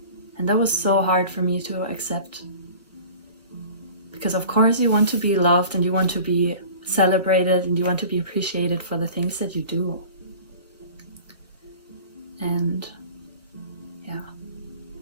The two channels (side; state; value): both; inverted; correlation -0.42